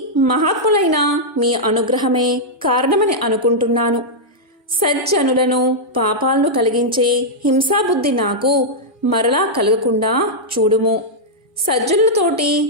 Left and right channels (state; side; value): normal; both; correlation -0.07